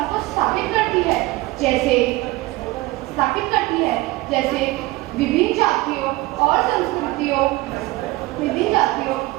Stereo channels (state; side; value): quieter; left; 20.0 dB